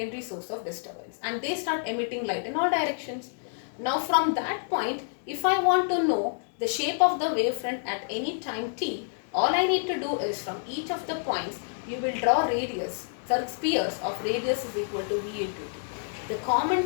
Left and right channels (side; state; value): right; silent; digital silence